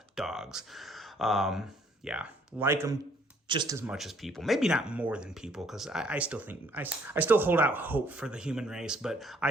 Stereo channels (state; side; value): normal; both; correlation 0.63